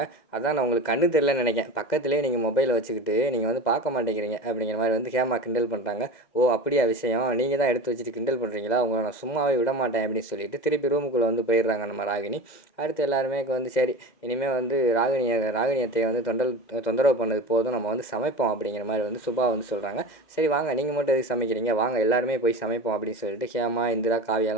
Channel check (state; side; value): late; right; 2.0 ms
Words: அதான் நான் உங்களுக்கு கண்ணு தெரியலன்னு நினைக்கிறேன், பக்கத்துலேயே நீங்கள் மொபைலை வச்சுக்கிட்டு நீங்கள் வந்து பார்க்க மாட்டேங்கிறீங்க அப்படிங்கிற மாதிரி வந்து ஹேமா கிண்டல் பண்ணுறாங்க. ஓ, அப்படியா விஷயம், நீங்கள் தான் எடுத்து வச்சுட்டு கிண்டல் பண்ணுறீங்களா, உங்களை நான் சும்மாவே விட மாட்டேன் அப்படின்னு சொல்லிட்டு திருப்பி ரூமுக்குள்ளே வந்து போயிடுறாங்க நம்ம ராகினி. அடுத்து எல்லாருமே வந்து சரி, இனிமேல் வந்து ராகினியத்தை வந்து தொந்தரவு பண்ணது போதும், நம்ம வந்து சமைப்போம் அப்படிங்கிற மாதிரி வந்து சுபா வந்து சொல்கிறாங்க. சரி வாங்க, நீங்கள் மட்டும் எதுக்கு சமைக்கிறீங்க, வாங்க எல்லாருமே போய் சமைப்போம் அப்படின்னு சொல்லிட்டு ஹேமா, இந்திரா,